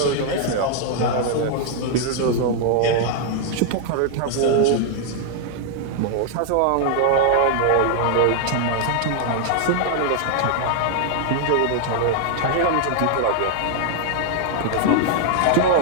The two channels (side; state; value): both; different; correlation 0.00